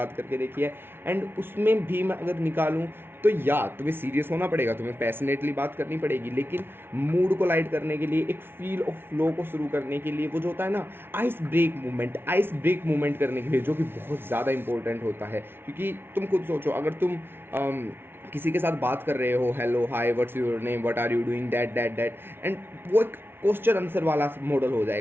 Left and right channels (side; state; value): left; late; 0.11 ms